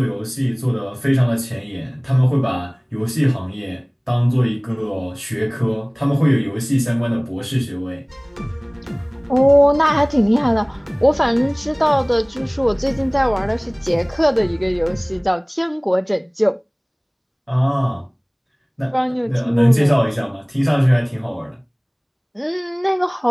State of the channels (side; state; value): both; identical; correlation 1.00